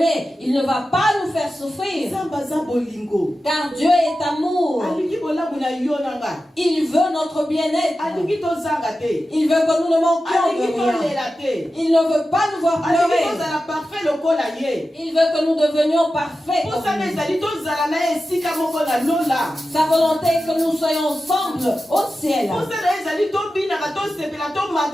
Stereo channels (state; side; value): normal; both; correlation 0.93